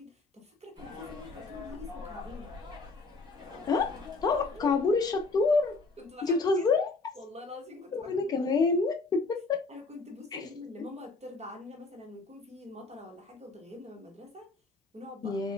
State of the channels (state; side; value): quieter; right; 3.7 dB